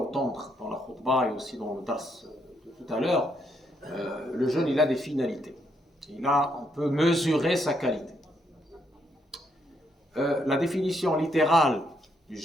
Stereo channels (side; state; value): both; normal; correlation 0.76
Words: dans la khutbah et aussi dans le dars de tout à l'heure, le jeûne, il a des finalités. On peut mesurer sa qualité. La définition littérale du